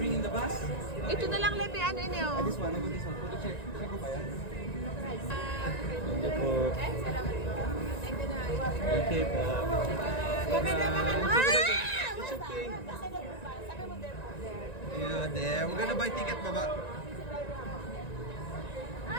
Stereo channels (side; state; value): right; late; 1.9 ms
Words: Bring in the bus. Ito na lang Lepe, ano ini oh. This one, I got this one. Photo check. Check ko ba yan? Thank you po. Salamat po. Thank you na. Okay po. It's okay. Sabi mo there. Yeah, there. We're gonna buy ticket, baba.